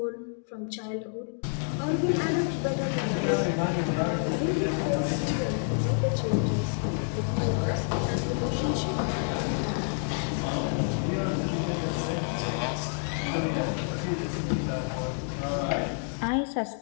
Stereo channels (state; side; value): silent; right; 56 dB below the other